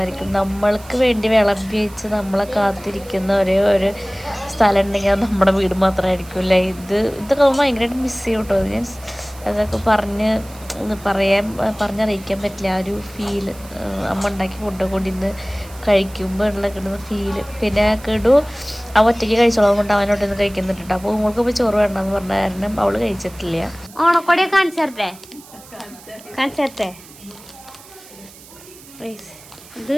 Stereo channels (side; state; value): right; noise; hiss, 21 dB below the sound